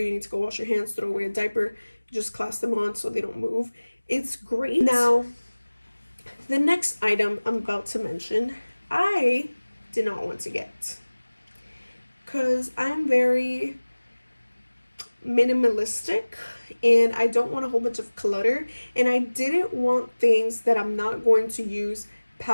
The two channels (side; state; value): both; inverted; correlation -1.00